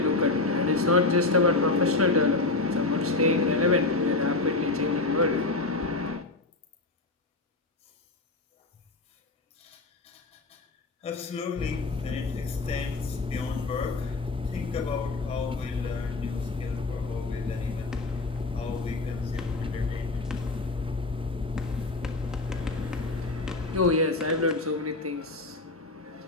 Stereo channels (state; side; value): quieter; right; 3.3 dB